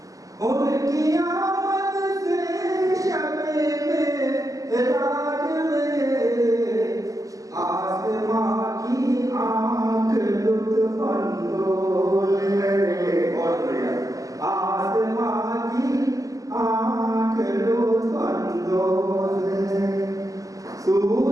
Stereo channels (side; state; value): left; late; 0.17 ms